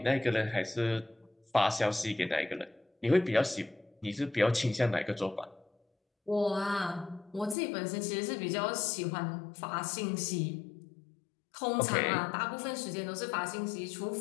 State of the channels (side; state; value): right; drops out; at 7.6 s